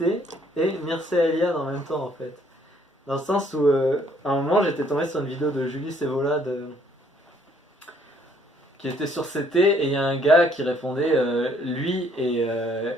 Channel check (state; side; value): normal; both; correlation 0.64